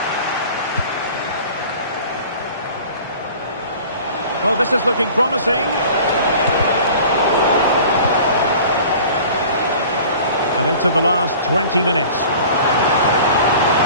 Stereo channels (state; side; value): inverted; both; correlation -0.44